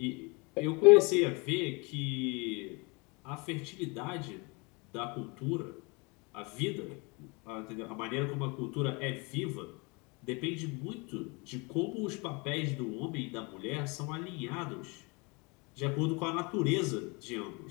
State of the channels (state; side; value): quieter; right; 29.1 dB